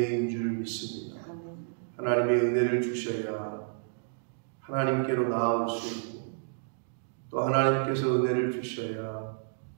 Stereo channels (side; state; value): left; silent; digital silence